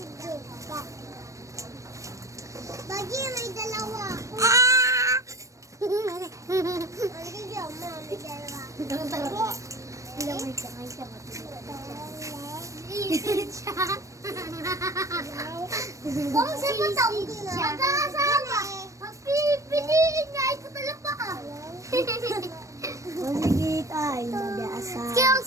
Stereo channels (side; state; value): left; late; 0.15 ms